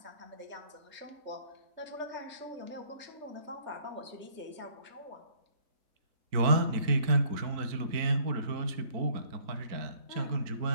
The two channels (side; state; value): left; late; 4.4 ms